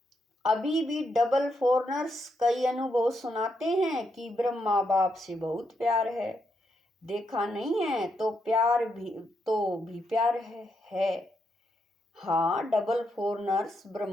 अभी भी डबल फॉरनर्स कई अनुभव सुनाते हैं कि ब्रह्मा बाप से बहुत प्यार है। देखा नहीं है तो प्यार भी प्यार है। हाँ, डबल फॉरनर्स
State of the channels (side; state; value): both; normal; correlation 0.80